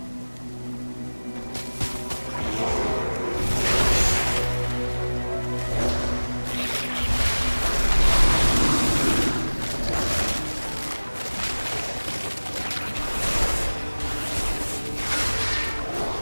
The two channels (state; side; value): inverted; both; correlation -1.00